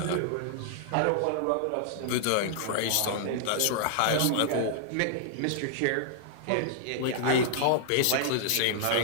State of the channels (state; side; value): different; both; correlation -0.01